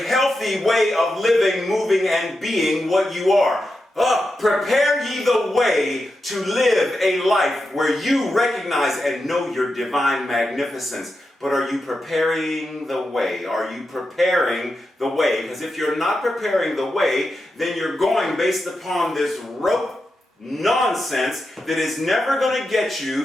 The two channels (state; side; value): normal; both; correlation 0.89